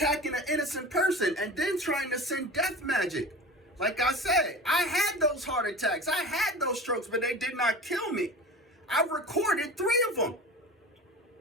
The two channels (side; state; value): both; normal; correlation 0.35